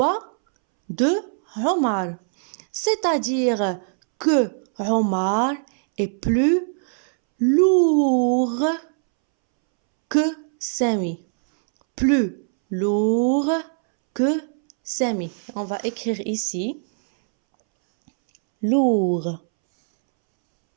de Omar. C'est-à-dire que Omar est plus lourd que Sami. Plus lourd que Sami. On va écrire ici lourd.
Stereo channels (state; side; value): silent; left; 64 dB below the other